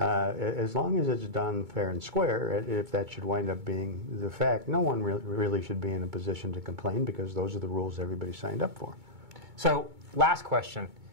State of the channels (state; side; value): late; left; 2.2 ms